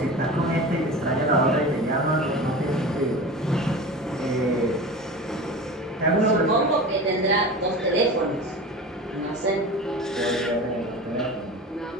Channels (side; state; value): both; normal; correlation 0.32